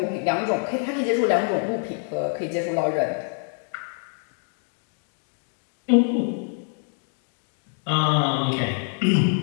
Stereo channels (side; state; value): right; silent; 57 dB below the other